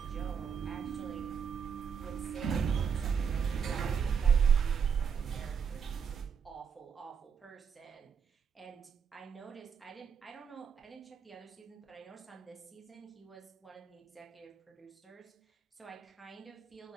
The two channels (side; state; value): left; quieter; 6.8 dB